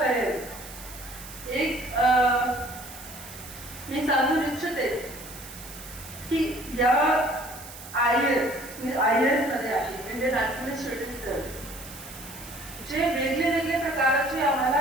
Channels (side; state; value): right; noise; hiss, 15 dB below the sound